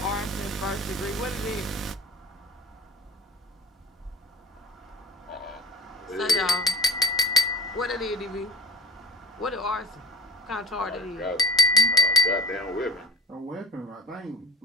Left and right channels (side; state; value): both; normal; correlation 0.33